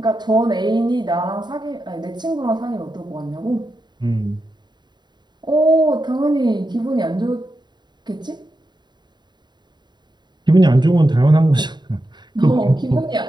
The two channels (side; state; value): left; late; 0.21 ms